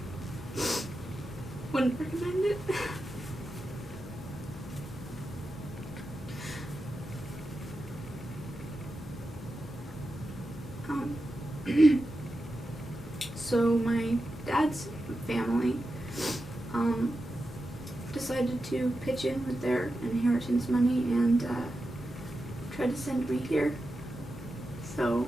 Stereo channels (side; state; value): both; normal; correlation 0.90